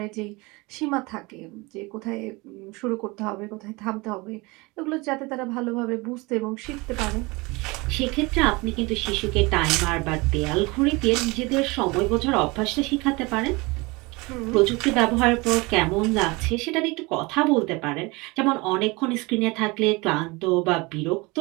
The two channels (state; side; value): quieter; left; 24.9 dB